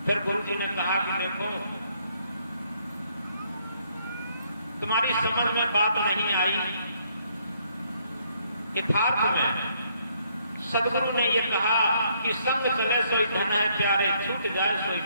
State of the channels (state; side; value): inverted; both; correlation -0.69